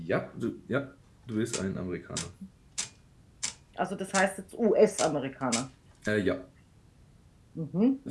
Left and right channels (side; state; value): both; identical; correlation 1.00